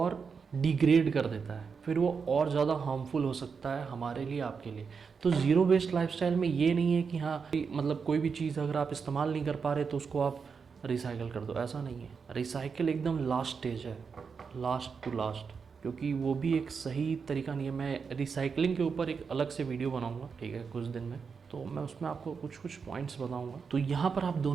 डिग्रेड कर देता है, फिर वो और ज़्यादा हार्मफुल हो सकता है हमारे लिए, आपके लिए। तो ज़ीरो वेस्ट लाइफस्टाइल में ये नहीं है कि हाँ मतलब कोई भी चीज़ अगर आप इस्तेमाल नहीं कर पा रहे तो उसको आप रिसाइकिल कर दो, ऐसा नहीं है। रिसाइकिल एकदम लास्ट स्टेज है, लास्ट टू लास्ट, क्योंकि वो भी एक सही तरीका नहीं है। मैं रिसाइकलिंग के ऊपर एक अलग से वीडियो बनाऊंगा, ठीक है, कुछ दिन में, तो मैं उसमें आपको कुछ कुछ पॉइंट्स बताऊंगा। तो यहाँ पर आप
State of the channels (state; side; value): quieter; left; 5.7 dB